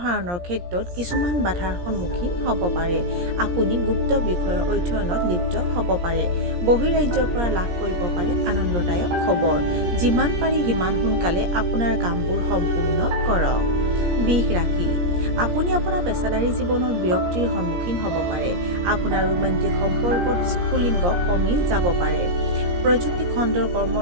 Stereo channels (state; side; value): late; left; 17 ms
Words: ক্ষেত্ৰত কিছুমান বাধাৰ সন্মুখীন হ'ব পাৰে। আপুনি গুপ্ত বিষয়ৰ অধ্যয়নত লিপ্ত হ'ব পাৰে। বহিৰাজ্যৰ পৰা লাভ কৰিব পাৰে আনন্দদায়ক খবৰ। যিমান পাৰি সিমান সোনকালে আপোনাৰ কামবোৰ সম্পূৰ্ণ কৰক। বৃষ ৰাশি। আপুনি আপোনাৰ পেছাদাৰী জীৱনৰ বিৰক্তিৰ সন্মুখীন হ'ব পাৰে। আপোনাৰ ৰোমান্টিক সম্পৰ্কত স্ফুলিংগ কমি যাব পাৰে। প্ৰযুক্তি খণ্ডৰ